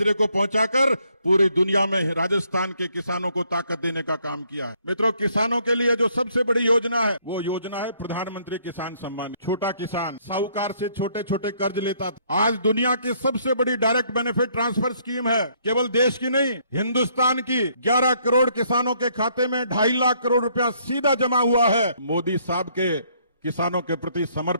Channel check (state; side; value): inverted; both; correlation -0.67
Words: को पहुंचाकर पूरी दुनिया में राजस्थान के किसानों को ताकत देने का काम किया है। मित्रों, किसानों के लिए जो सबसे बड़ी योजना है वो योजना है प्रधानमंत्री किसान सम्मान। छोटा किसान साहूकार से छोटे छोटे कर्ज लेता था, आज दुनिया की सबसे बड़ी डायरेक्ट बेनिफिट ट्रांसफर स्कीम है। केवल देश की नहीं, हिंदुस्तान की 11 करोड़ किसानों के खाते में 2.5 लाख करोड़ रुपया सीधा जमा हुआ है। मोदी साहब के किसानों के प्रति